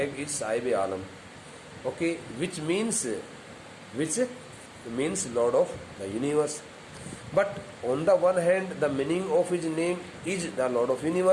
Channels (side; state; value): both; identical; correlation 1.00